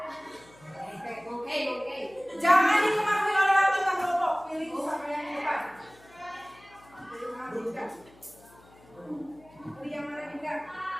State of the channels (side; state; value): left; noise; hum, 26 dB below the sound